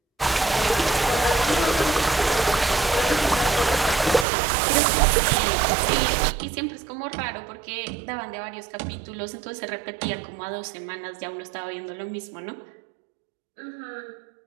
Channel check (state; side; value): drops out; left; at 4.2 s